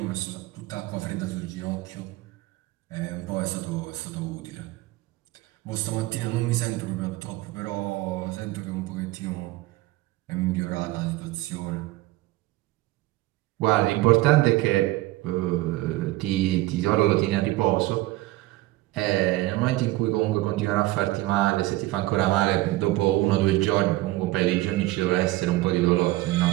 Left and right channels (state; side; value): quieter; left; 18.2 dB